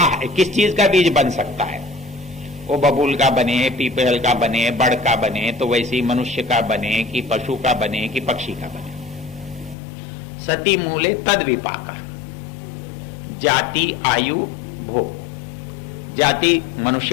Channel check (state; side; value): drops out; right; at 9.8 s